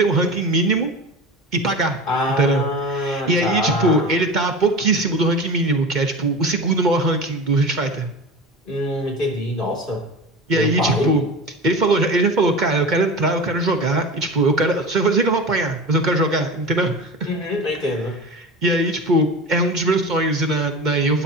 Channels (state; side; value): normal; both; correlation 0.31